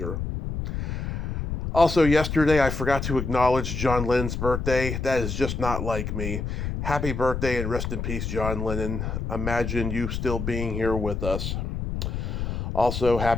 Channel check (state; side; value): noise; left; rumble, 3 dB below the sound